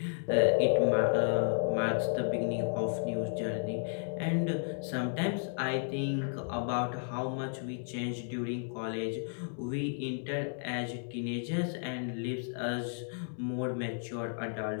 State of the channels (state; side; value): silent; right; digital silence